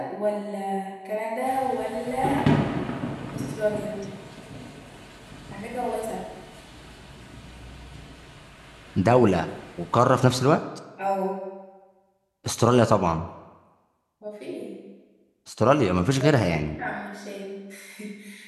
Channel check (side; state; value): both; identical; correlation 1.00